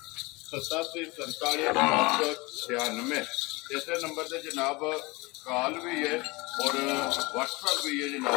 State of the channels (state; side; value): quieter; right; 24.3 dB